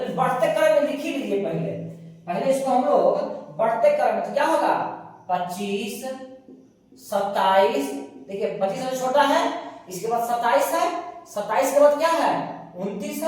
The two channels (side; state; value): both; identical; correlation 1.00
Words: बढ़ते क्रम में लिख ही लीजिए। पहले इसको हम लोग बढ़ते क्रम में, तो क्या होगा? 25 27, देखिए 25 सबसे छोटा है, इसके बाद 27 है, 27 के बाद क्या है? 29